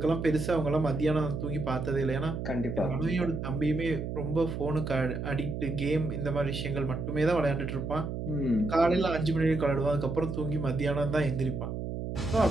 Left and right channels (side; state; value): right; noise; hum, 5 dB below the sound